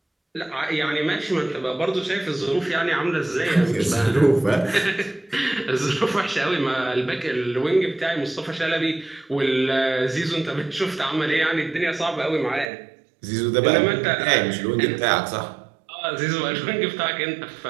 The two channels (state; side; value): drops out; left; at 12.7 s